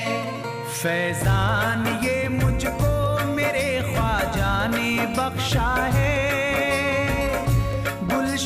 फैजान ये मुझको मेरे ख्वाजा ने बख्शा है,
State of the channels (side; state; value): both; identical; correlation 1.00